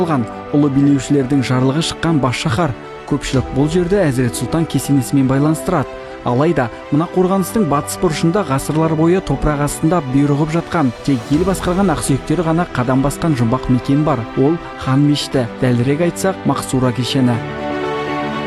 ұлы билеушілердің жарлығы шыққан бас шаһар. Көпшілік бұл жерді Әзірет Сұлтан кесенесімен байланыстырады. Алайда, мына қорғаныстың батыс бұрышында ғасырлар бойы топырақ астында бұйрығып жатқан, тек ел басқарған ақсүйектері ғана қадам басқан жұмбақ мекен бар. Ол хан мешіті, дәлірек айтсақ, Мақсура кешені.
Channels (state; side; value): identical; both; correlation 1.00